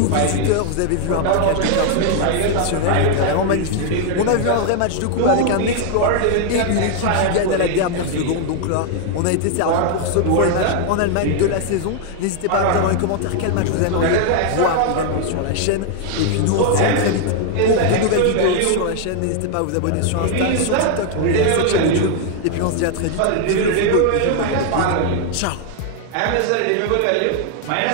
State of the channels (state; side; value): different; both; correlation 0.00